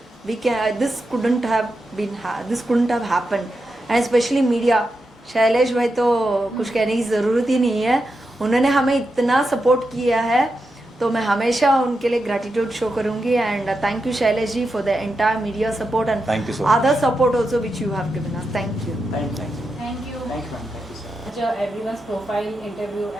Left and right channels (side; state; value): both; normal; correlation 0.87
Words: this couldn't have happened. And especially media, Shailesh भाई तो कुछ कहने की ज़रूरत ही नहीं है, उन्होंने हमें इतना सपोर्ट किया है, तो मैं हमेशा उनके लिए ग्रैटिट्यूड शो करूंगी। And thank you Shailesh ji for the entire media support and Thank you so other support also which you have given us. Thank you. Thank you. Thank you. Thank you, ma'am. Thank you, sir. Everyone's profile, interview,